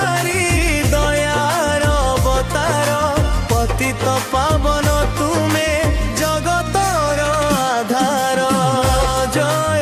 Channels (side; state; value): both; identical; correlation 1.00